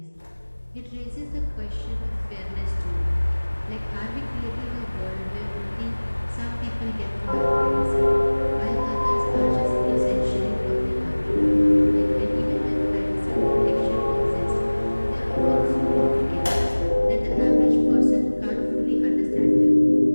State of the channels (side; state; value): both; inverted; correlation -1.00